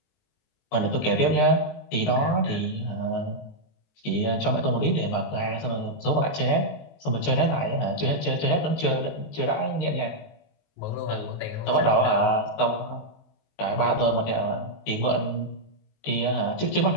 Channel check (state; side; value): late; right; 19 ms